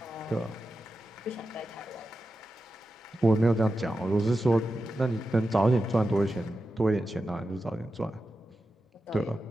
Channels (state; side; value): normal; both; correlation 0.91